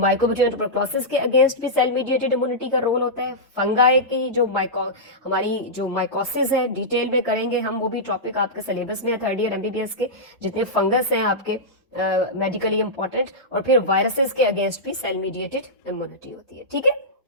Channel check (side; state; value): both; normal; correlation -0.12